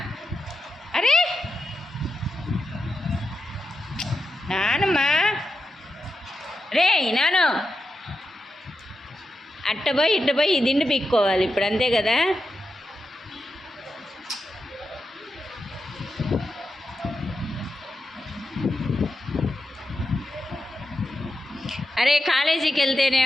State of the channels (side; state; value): both; normal; correlation 0.88